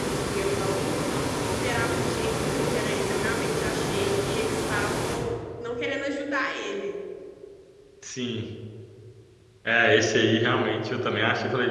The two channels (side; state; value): both; identical; correlation 1.00